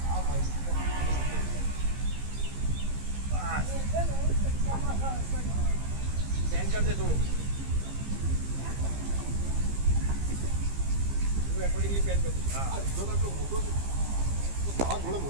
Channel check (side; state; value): left; late; 15 ms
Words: આ માઈક સ્ટેન્ડ कर दे થોડું वो अकॉर्डिंगली पेन कर। हां જો આટલો મોટો છે આ થોડો